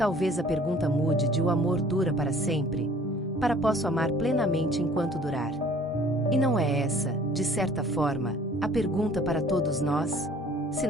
a pergunta mude de "o amor dura para sempre" para "posso amar plenamente enquanto durar". E não é essa, de certa forma, a pergunta para todos nós? Se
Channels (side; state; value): both; normal; correlation 0.53